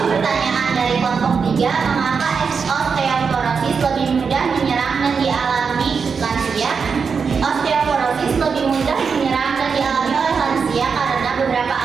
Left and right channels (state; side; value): quieter; left; 5.7 dB